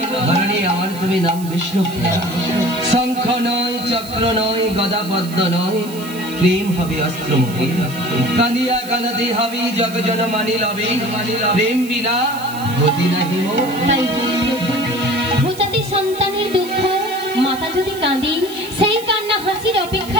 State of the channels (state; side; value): noise; right; hiss, 16 dB below the sound